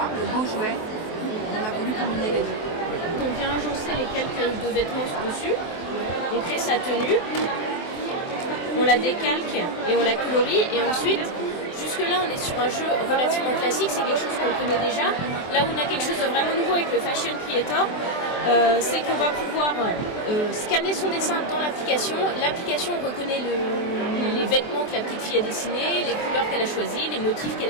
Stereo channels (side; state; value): right; late; 23 ms